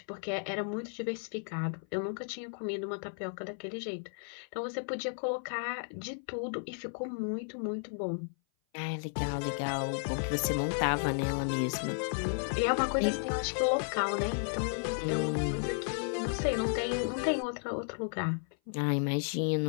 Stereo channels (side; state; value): right; silent; 55 dB below the other